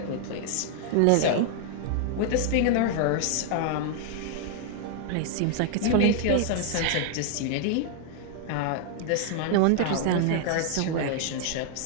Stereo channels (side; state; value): both; different; correlation 0.00